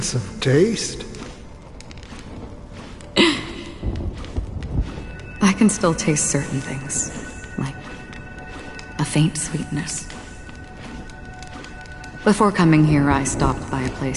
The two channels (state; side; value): identical; both; correlation 1.00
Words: of taste? I can still taste certain things, like a faint sweetness. Before coming here, I stopped by a